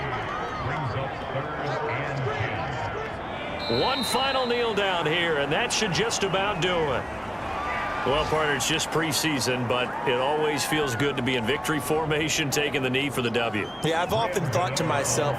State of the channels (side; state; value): both; identical; correlation 1.00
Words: One final kneel down here, and that should just about do it. Well, partner, it's just preseason, but it always feels good to be in victory formation, taking the knee for the W. Yeah, I've often thought to myself